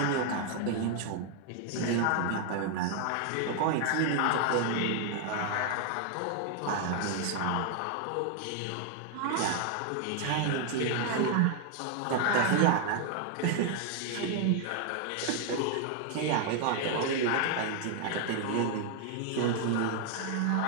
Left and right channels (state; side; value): different; both; correlation 0.00